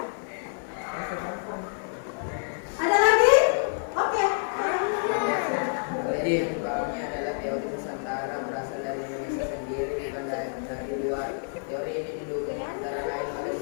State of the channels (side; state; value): right; silent; digital silence